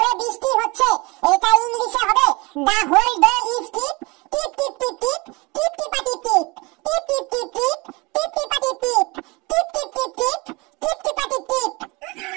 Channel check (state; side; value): quieter; left; 25.5 dB